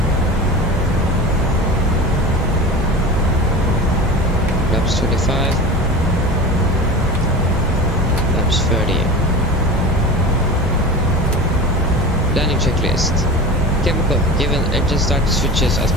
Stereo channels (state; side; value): normal; both; correlation 0.32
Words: Laps 25. Landing checklist. Chemical, given engine start switches as